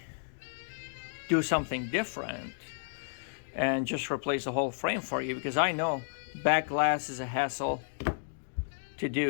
do something different and just replace the whole frame for you? Because I know back glass is a hassle to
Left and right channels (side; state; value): right; silent; digital silence